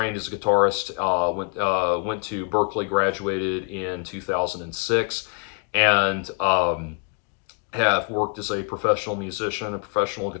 as a guitarist. Went to Berklee, graduated in 2006, and have worked as a professional musician, a professional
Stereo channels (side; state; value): right; quieter; 37.2 dB